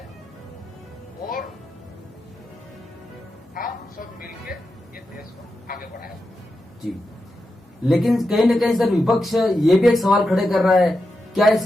और हम सब मिलके ये देश को आगे बढ़ाएंगे। जी, लेकिन कहीं न कहीं सर विपक्ष ये भी एक सवाल खड़े कर रहा है, क्या इस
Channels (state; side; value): normal; both; correlation 0.88